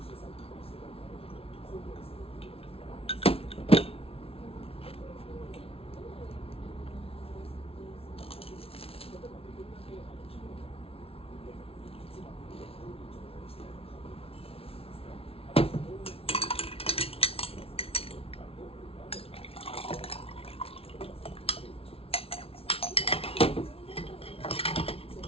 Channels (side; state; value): right; late; 0.27 ms